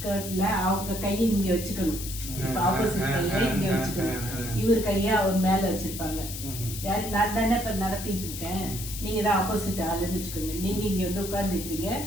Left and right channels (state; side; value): noise; left; hiss, 8 dB below the sound